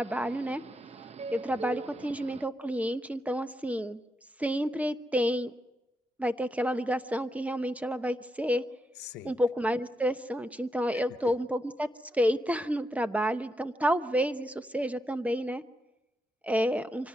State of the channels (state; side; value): normal; both; correlation 0.84